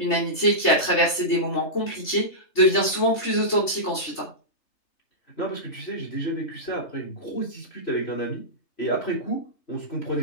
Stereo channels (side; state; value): right; late; 3.3 ms